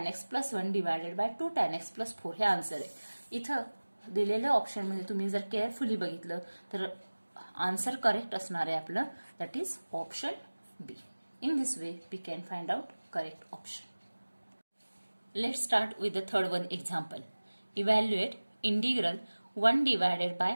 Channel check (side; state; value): both; inverted; correlation -1.00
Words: x plus 1 divided by 2 tan x plus 4 हे answer आहे. इथं दिलेल्या ऑप्शनमध्ये तुम्ही जर केअरफुली बघितलं तर आन्सर करेक्ट असणार आहे आपलं, that is option B. In this way we can find out correct option. Let's start with the third one example. Evaluate integral 1 divided by